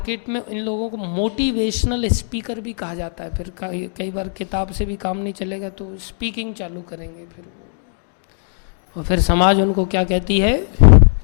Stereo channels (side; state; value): right; silent; digital silence